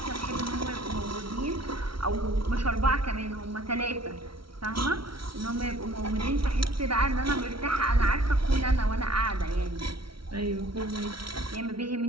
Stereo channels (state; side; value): late; left; 0.74 ms